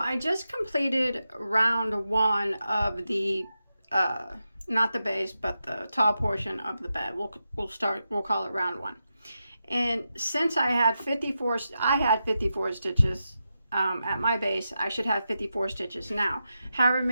just completed round one of the not the base, but the top portion of the bed. We'll call it round one. And since I had 54 stitches at my base, I should have 54 stitches now. However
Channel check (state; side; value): inverted; both; correlation -0.88